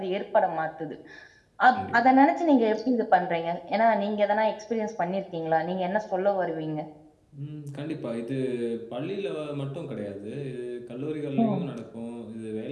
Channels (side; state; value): both; identical; correlation 1.00